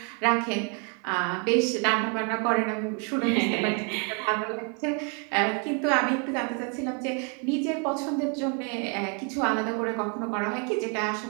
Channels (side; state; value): left; quieter; 37.2 dB